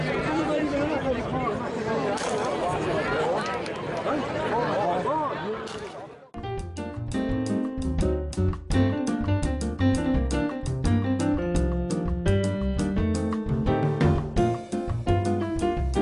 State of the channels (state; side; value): identical; both; correlation 1.00